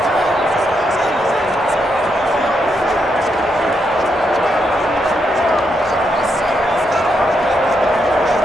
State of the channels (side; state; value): both; normal; correlation 0.80